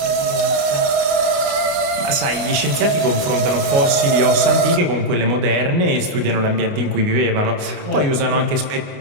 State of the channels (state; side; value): late; left; 29 ms